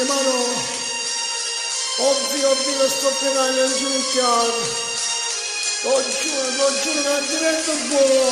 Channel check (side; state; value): both; identical; correlation 1.00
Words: mano, ovvio lo sto pregando in ginocchiato, lo giuro che divento